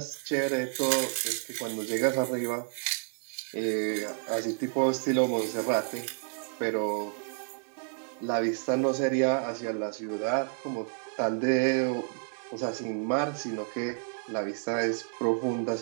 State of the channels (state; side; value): silent; left; 58 dB below the other